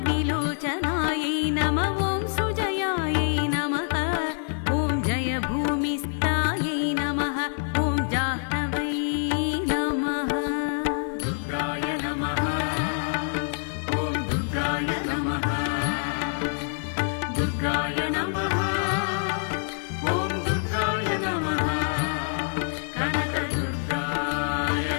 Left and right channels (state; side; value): silent; right; 61 dB below the other